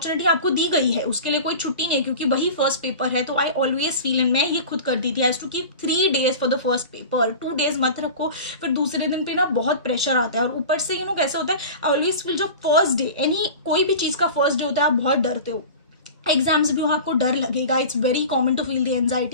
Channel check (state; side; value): inverted; both; correlation -0.35